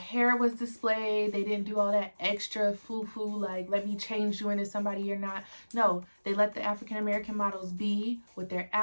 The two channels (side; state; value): both; inverted; correlation -1.00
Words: was displayed. They didn't do all that extra foo-foo, like, let me change you into somebody you're not. No, they let the African American models be with their